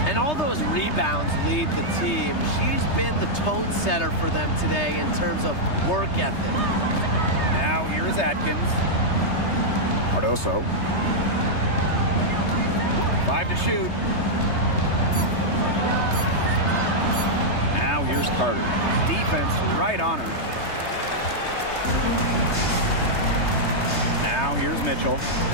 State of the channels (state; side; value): late; right; 3.3 ms